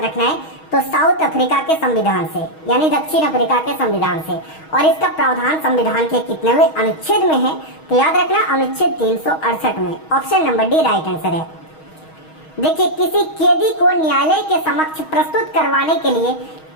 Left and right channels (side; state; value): right; late; 6.3 ms